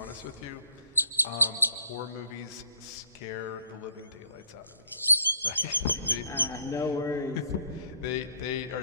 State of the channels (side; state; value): both; inverted; correlation -0.61